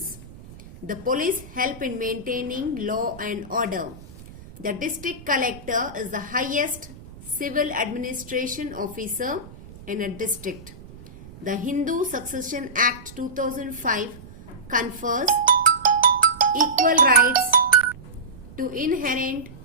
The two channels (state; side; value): noise; right; rumble, 18 dB below the sound